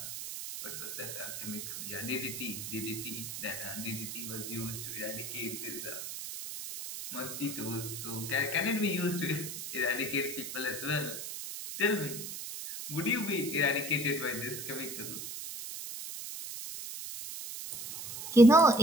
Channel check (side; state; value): right; noise; hiss, 7 dB below the sound